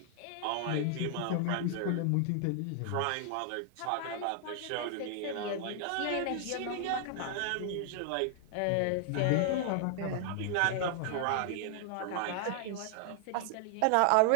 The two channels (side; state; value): both; different; correlation 0.00